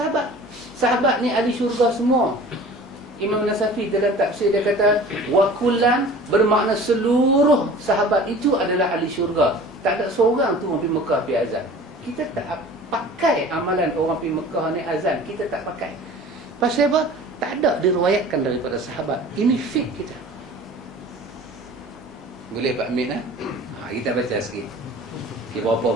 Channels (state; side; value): normal; both; correlation 0.43